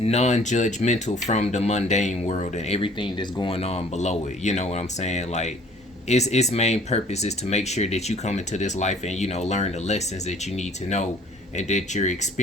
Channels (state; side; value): normal; both; correlation 0.54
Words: from the mundane world and everything that's going on below it. You know what I'm saying? Like its main purpose is to make sure that you come into this life and learn the lessons that you need to know, and that you're